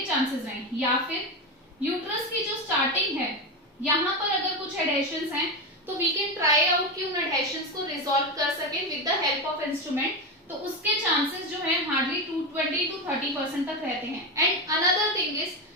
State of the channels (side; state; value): both; normal; correlation 0.15